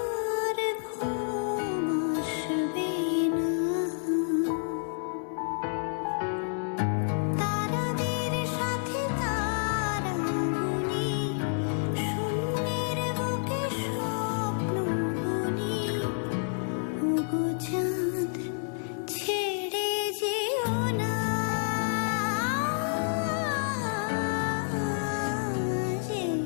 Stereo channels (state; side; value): silent; right; 58 dB below the other